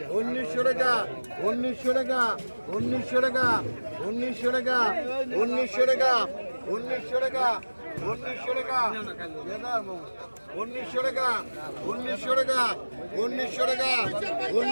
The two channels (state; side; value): inverted; both; correlation -1.00